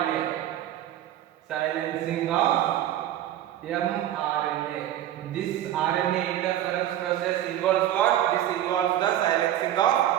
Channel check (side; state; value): left; quieter; 12.1 dB